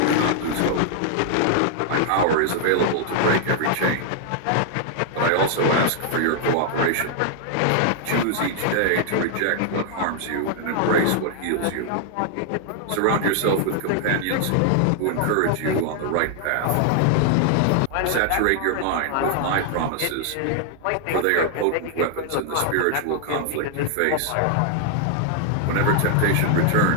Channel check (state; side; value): different; both; correlation 0.00